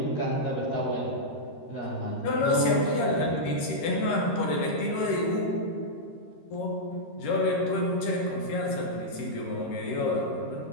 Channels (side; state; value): right; late; 13 ms